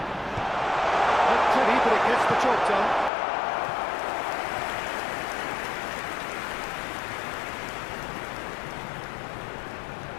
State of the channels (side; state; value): right; drops out; at 3.1 s